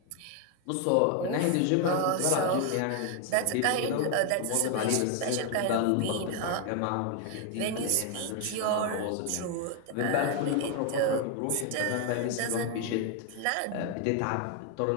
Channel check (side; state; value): both; different; correlation 0.01